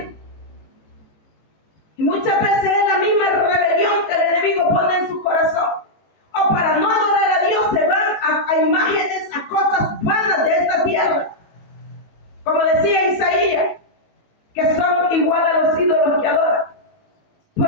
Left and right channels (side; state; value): right; late; 18 ms